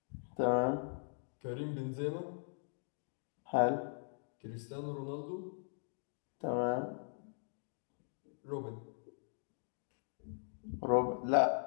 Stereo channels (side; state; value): right; silent; digital silence